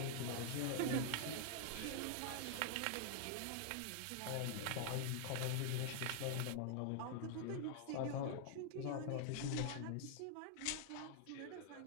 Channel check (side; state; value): both; different; correlation 0.00